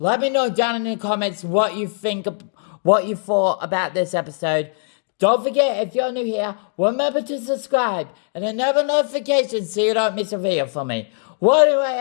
me know down in the comments what you thought about this episode. Don't forget, if you're new here, remember to subscribe and enable notifications so you don't miss a video from me. Well, anyway,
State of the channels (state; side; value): silent; right; digital silence